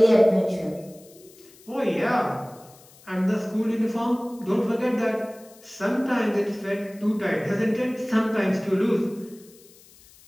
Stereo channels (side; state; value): left; noise; hiss, 25 dB below the sound